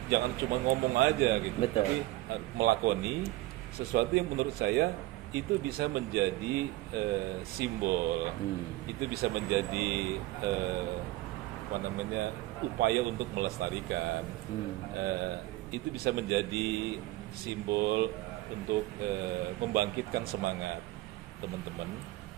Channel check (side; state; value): left; quieter; 18.0 dB